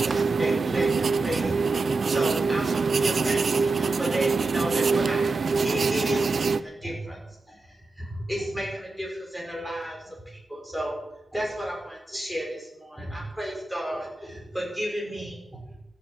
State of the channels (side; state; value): left; quieter; 3.4 dB